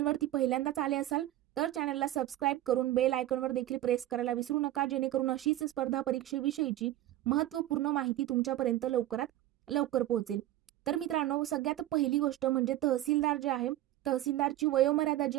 पहिल्यांदाच आले असाल तर चॅनलला सबस्क्राईब करून बेल आयकॉनवर देखील प्रेस करायला विसरू नका, जेणेकरून अशीच स्पर्धा परीक्षेविषयीची महत्त्वपूर्ण माहिती तुमच्यापर्यंत लवकरात लवकर पोहोचेल। तर मित्रांनो, सगळ्यात पहिली गोष्ट म्हणजे तहसीलदार जे आहे, तहसीलदारची वयोमर्यादा जी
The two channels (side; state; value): left; quieter; 14.4 dB